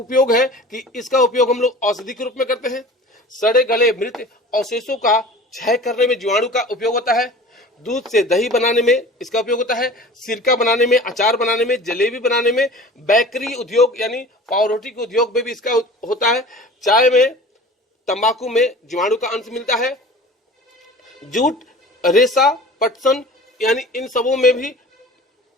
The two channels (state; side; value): normal; both; correlation 0.41